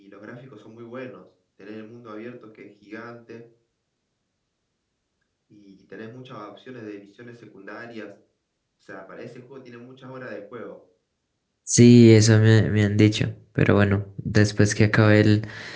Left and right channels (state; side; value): identical; both; correlation 1.00